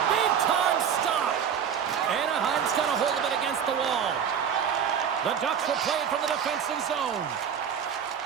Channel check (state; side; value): quieter; left; 7.9 dB